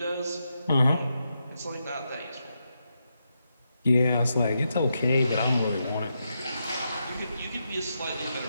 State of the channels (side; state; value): both; inverted; correlation -0.84